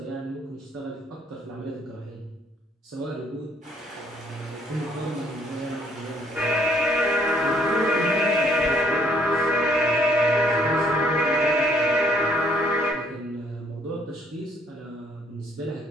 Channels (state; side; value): normal; both; correlation 0.64